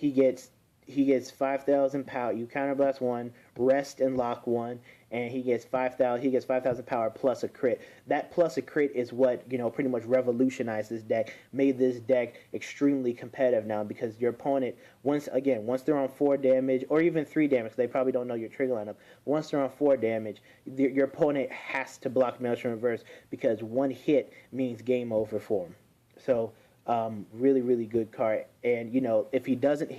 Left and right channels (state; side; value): identical; both; correlation 1.00